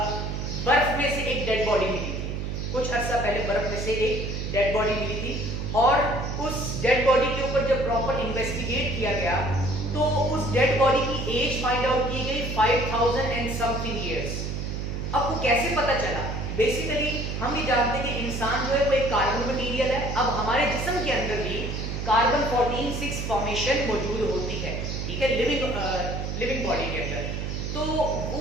बर्फ में से एक डेड बॉडी मिली थी, कुछ अर्सा पहले बर्फ में से एक डेड बॉडी मिली थी और उस डेड बॉडी के ऊपर जब प्रॉपर इन्वेस्टिगेट किया गया तो उस डेड बॉडी की एज फाइंड आउट की गई 5000 एंड समथिंग इयर्स। अब वो कैसे पता चला? बेसिकली हम ये जानते हैं कि इंसान जो है वो एक कार्बन मटीरियल है। अब हमारे जिस्म के अंदर भी कार्बन 14 फॉर्मेशन मौजूद होती है, ठीक है, लिविंग बॉडी के अंदर। तो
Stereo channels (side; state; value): right; noise; hum, 3 dB below the sound